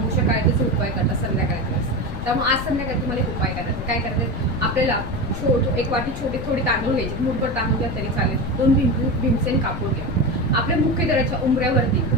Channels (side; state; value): left; noise; rumble, 7 dB below the sound